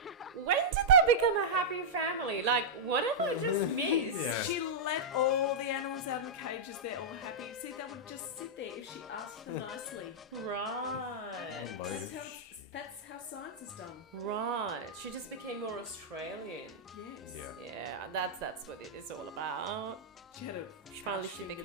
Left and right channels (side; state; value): both; normal; correlation -0.10